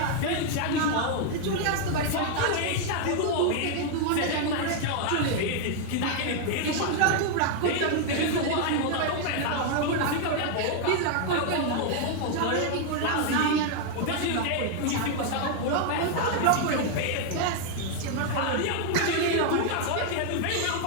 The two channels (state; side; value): different; both; correlation 0.00